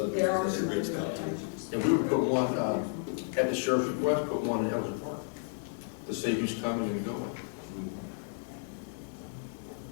There are subdivisions some that reached out to. locations. And we would put one, at the sheriff's request, put one in Elgin Park, to see who's coming and going.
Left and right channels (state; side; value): silent; right; digital silence